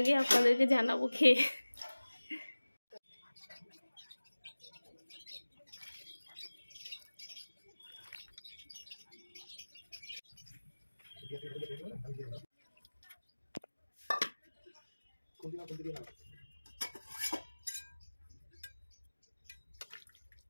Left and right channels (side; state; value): both; inverted; correlation -1.00